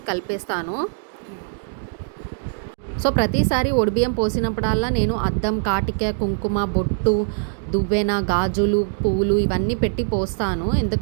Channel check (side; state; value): left; silent; digital silence